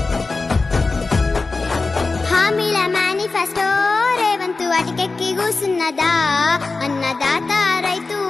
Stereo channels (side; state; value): right; quieter; 3.8 dB